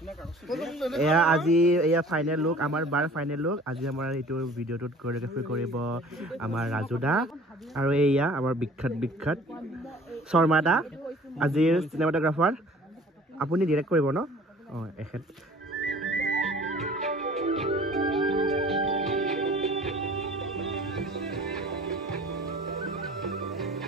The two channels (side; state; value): both; normal; correlation 0.49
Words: এয়া আজি এয়া final look আমাৰ বাৰ final look আজি আমাৰ এইটো ভিডিওটোত কোৰিওগ্ৰাফি কৰিব আমাৰ ৰাজুদা আৰু এয়া আমাৰ বিখ্যাত শৰ্মা দা আজিৰ চিনেমাটোগ্ৰাফাৰ আপুনি ডাইৰেক্ট কৰিব ন এখেত